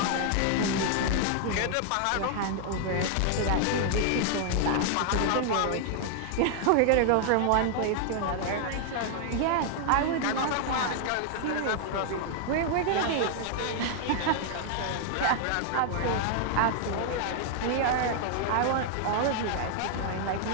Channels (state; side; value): different; both; correlation 0.00